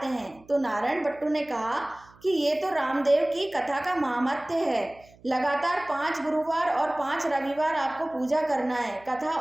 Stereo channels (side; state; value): right; noise; hum, 27 dB below the sound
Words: हैं। तो नारायण बट्टू ने कहा कि ये तो रामदेव की कथा का महात्म्य है, लगातार 5 गुरुवार और 5 रविवार आपको पूजा करना है। कथा